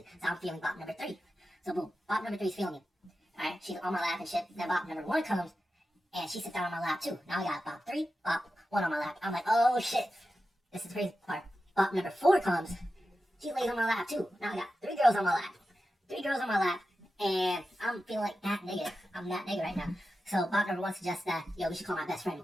to. So, I'm feeling bot number three. So, boom. Bot number three is feeling me. Alright? She's on my lap and shit. Then bot number one comes, and she sits down on my lap too. Now I got bot three, bot one on my lap. I'm like, oh shit. This is the crazy part. Bot number four comes. She lays on my lap too. Now I got 3 girls on my lap. 3 girls on my lap. And I'm feeling like that nigga. I'm that nigga right now. So bot number one suggests that, yo, we should call my best friend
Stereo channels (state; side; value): normal; both; correlation 0.92